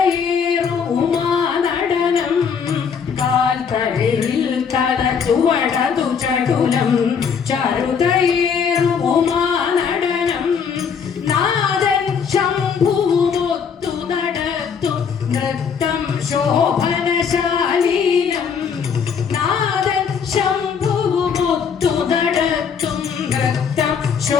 ഉമാനടനം കാൽത്തളിരിൽ തള ചുവടതു ചടുലം ചരുതയേറു ഉമാനടനം നാദൻ ശംഭുവുമൊത്തു നടത്തും നൃത്തം ശോഭനശാലീനം നാദൻ ശംഭുവുമൊത്തു നടത്തും നൃത്തം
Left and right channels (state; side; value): quieter; right; 6.6 dB